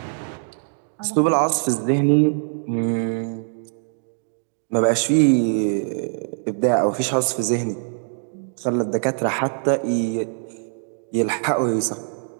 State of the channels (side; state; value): left; silent; 64 dB below the other